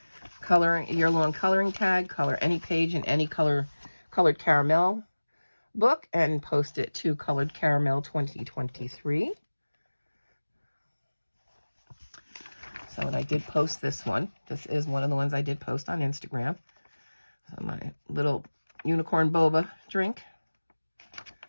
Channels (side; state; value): both; inverted; correlation -1.00